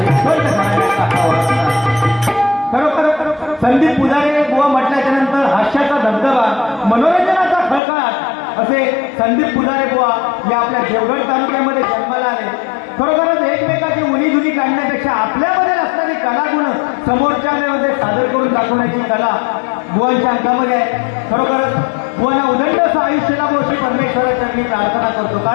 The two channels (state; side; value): drops out; right; at 7.8 s